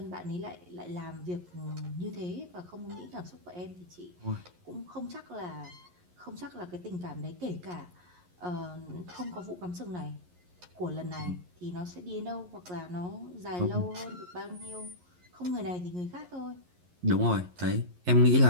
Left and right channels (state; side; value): late; left; 11 ms